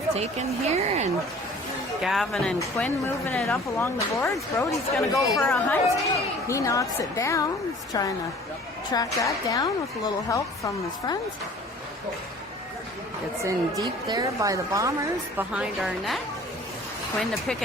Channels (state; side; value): normal; both; correlation 0.48